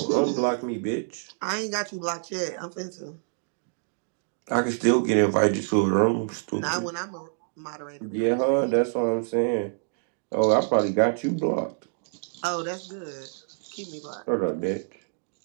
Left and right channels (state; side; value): silent; left; digital silence